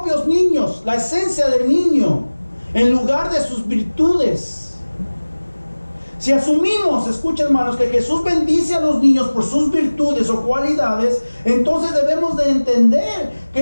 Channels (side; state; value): both; inverted; correlation -1.00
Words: niños, la esencia del niño, en lugar de sus virtudes. Si asumimos, escuchen, hermanos, que Jesús bendice a los niños por sus virtudes o cualidades, entonces debemos de entender que